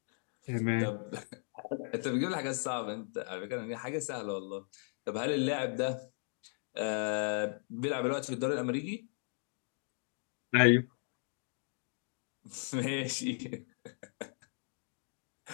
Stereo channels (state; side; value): silent; right; 53 dB below the other